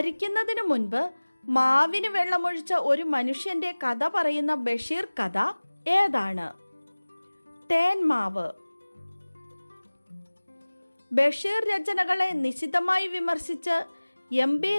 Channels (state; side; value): inverted; both; correlation -1.00